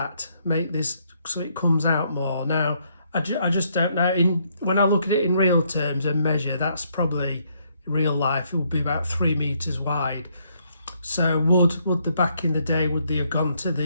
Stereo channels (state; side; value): inverted; both; correlation -0.72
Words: make this so it comes out more. Now I just don't know, when I look at it in real terms and measure, that's probably real life, it would be about 3 meters wide. So would the back in the day, would they have gone to